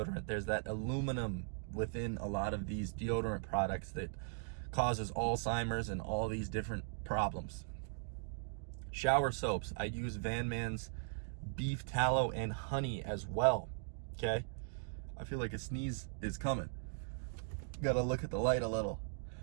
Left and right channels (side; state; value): left; silent; digital silence